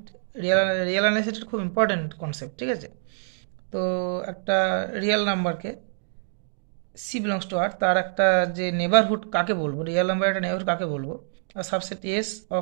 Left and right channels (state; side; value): silent; left; digital silence